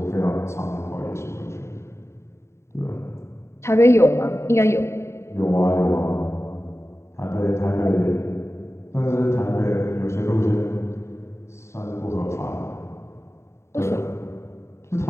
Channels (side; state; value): right; late; 0.13 ms